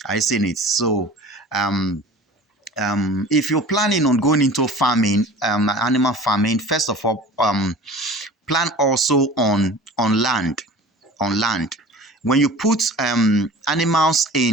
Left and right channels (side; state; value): both; normal; correlation 0.41